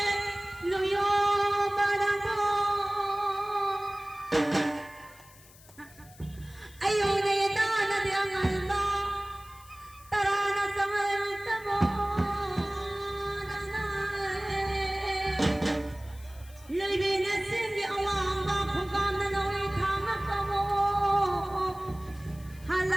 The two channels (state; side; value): noise; left; hiss, 23 dB below the sound